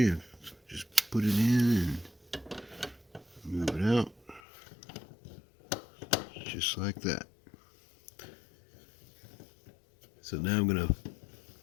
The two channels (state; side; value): drops out; right; at 4.4 s